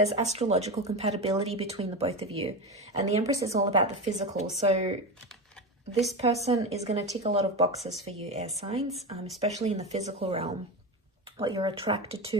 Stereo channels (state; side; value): normal; both; correlation 0.20